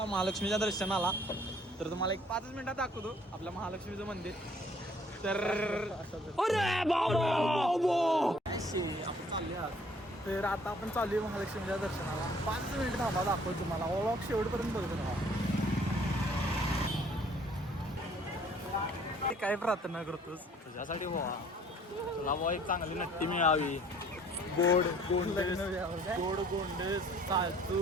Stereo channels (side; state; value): both; normal; correlation 0.58